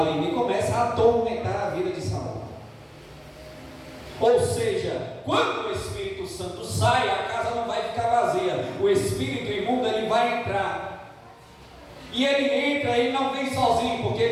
e começa a atormentar a vida de Saul. Ou seja, quando o Espírito Santo sai, a casa não vai ficar vazia. O espírito imundo, ele vai entrar. E ele entra e não vem sozinho, porque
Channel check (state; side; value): identical; both; correlation 1.00